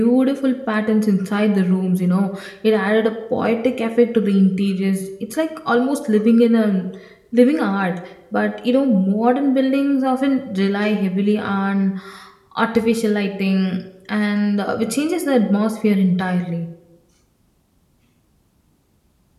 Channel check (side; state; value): both; identical; correlation 1.00